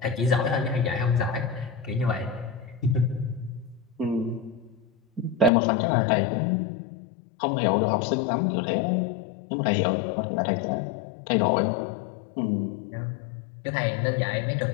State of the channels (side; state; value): right; drops out; at 5.5 s